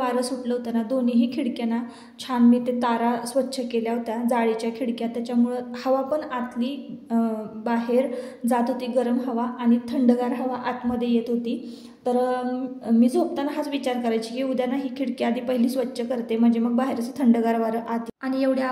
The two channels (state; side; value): identical; both; correlation 1.00